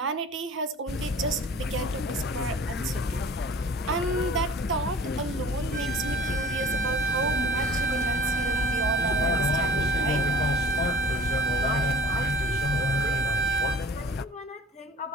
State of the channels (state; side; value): normal; both; correlation 0.45